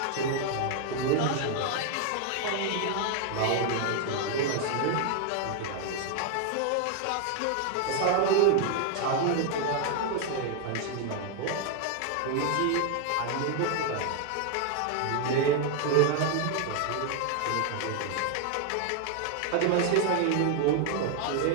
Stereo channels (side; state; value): both; different; correlation 0.00